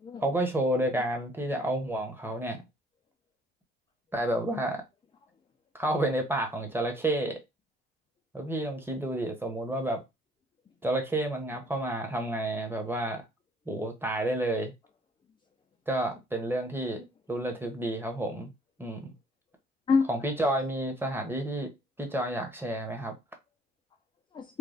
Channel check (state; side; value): normal; both; correlation 0.60